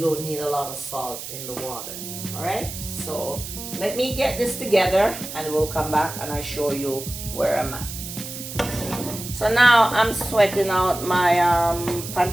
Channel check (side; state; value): right; noise; hiss, 9 dB below the sound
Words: need a lot of salt in the water. All right, so let me get this together and we'll come back and I show you where I'm at. So now I'm sweating out my